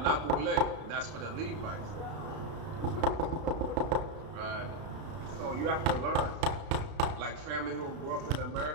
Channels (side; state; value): left; late; 33 ms